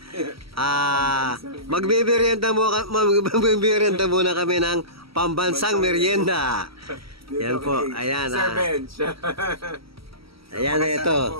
Magbibirienda muna kami ng pambansang merienda. Yan po, ayan. Sir Bench. Ayan na ito.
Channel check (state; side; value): late; left; 0.75 ms